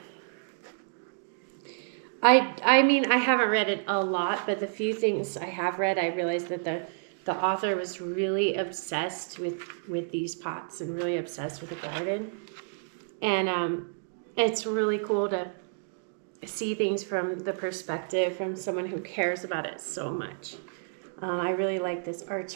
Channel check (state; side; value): silent; left; digital silence